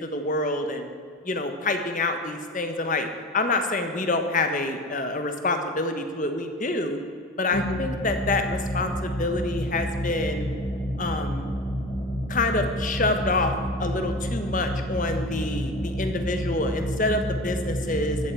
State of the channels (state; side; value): normal; both; correlation 0.32